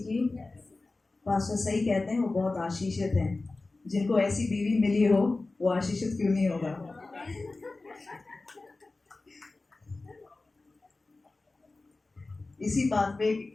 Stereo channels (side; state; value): right; quieter; 3.4 dB